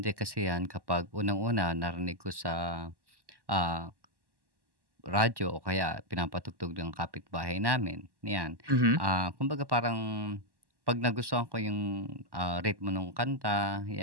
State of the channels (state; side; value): late; left; 1.1 ms